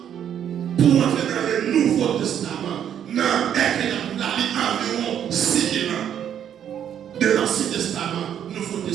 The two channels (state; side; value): quieter; left; 9.5 dB